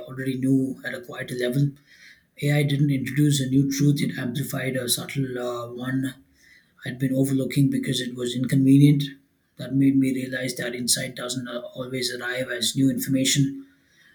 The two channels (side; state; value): both; identical; correlation 1.00